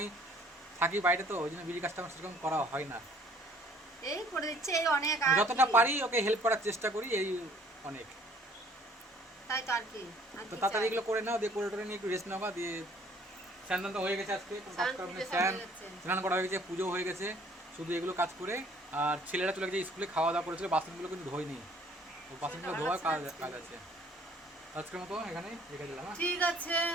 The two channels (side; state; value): both; normal; correlation 0.58